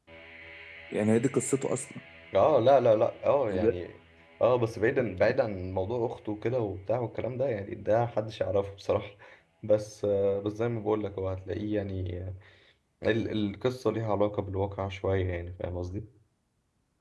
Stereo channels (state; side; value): identical; both; correlation 1.00